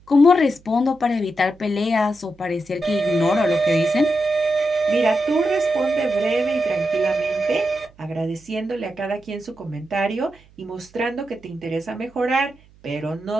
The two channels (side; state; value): right; noise; hum, 28 dB below the sound